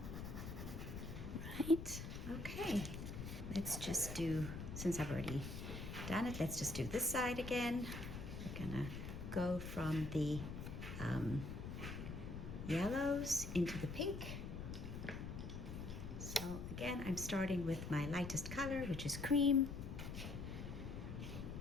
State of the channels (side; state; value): left; noise; rumble, 7 dB below the sound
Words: Right, okay. Let's just do, since I've already done it, let's just do this side again. We're gonna go from the yellows into the pink. So again, I'm starting with my lightest color, which is cream.